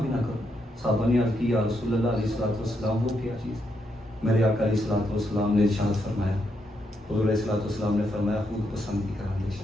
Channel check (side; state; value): both; normal; correlation 0.80